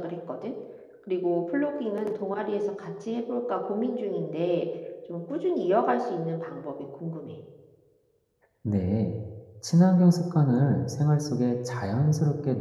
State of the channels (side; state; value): both; identical; correlation 1.00